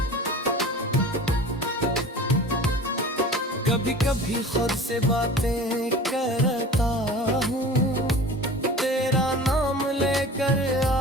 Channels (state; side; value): normal; both; correlation 0.40